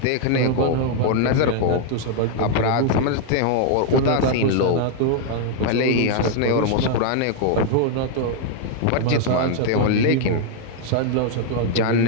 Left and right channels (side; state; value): both; different; correlation 0.00